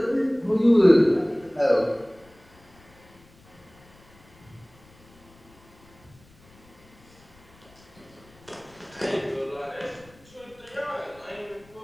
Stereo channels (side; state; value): left; noise; rumble, 27 dB below the sound